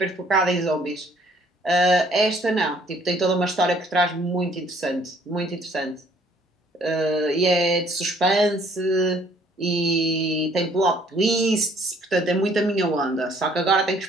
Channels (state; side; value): normal; both; correlation 0.61